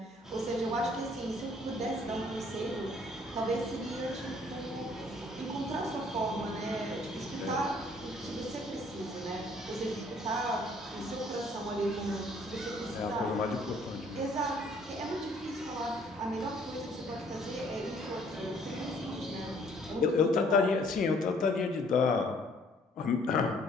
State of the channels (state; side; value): normal; both; correlation 0.61